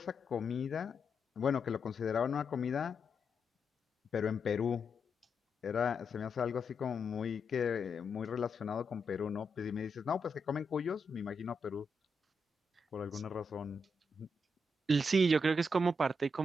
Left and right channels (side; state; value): both; normal; correlation 0.82